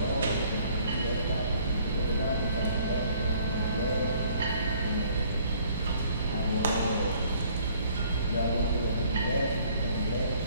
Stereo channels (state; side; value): inverted; both; correlation -0.59